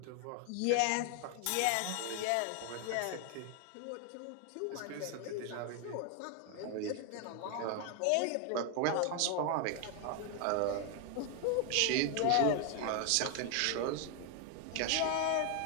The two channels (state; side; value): different; both; correlation 0.01